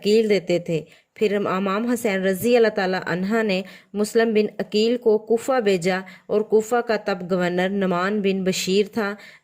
देते थे। फिर इमाम हुसैन रजी अल्लाह ताला अन्हा ने मुस्लिम बिन अकील को कूफा भेजा और कूफा का तब गवर्नर नुमान बिन बशीर था,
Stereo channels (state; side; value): identical; both; correlation 1.00